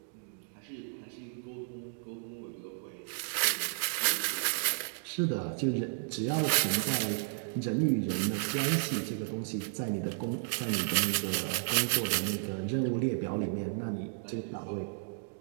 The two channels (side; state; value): left; silent; digital silence